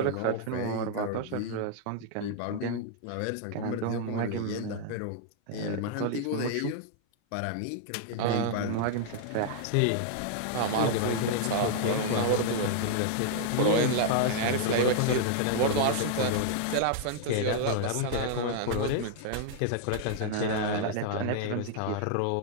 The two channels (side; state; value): both; different; correlation 0.00